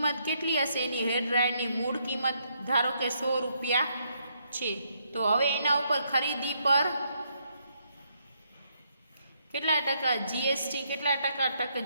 કેટલી હશે? એની હેર ડ્રાયરની મૂળ કિંમત ધારો કે 100 રૂપિયા છે. તો હવે એના ઉપર ખરીદી પર કેટલા ટકા જીએસટી, કેટલા ટકા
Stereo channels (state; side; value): inverted; both; correlation -0.74